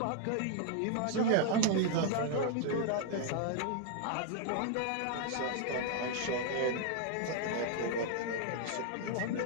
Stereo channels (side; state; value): both; different; correlation 0.00